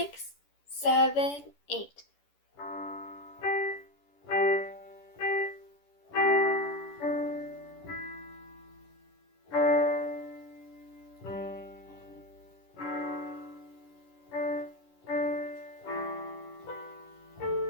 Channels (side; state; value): right; late; 11 ms